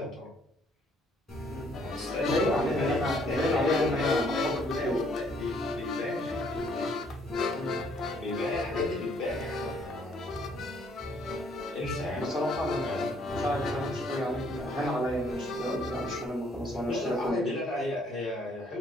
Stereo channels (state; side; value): normal; both; correlation 0.65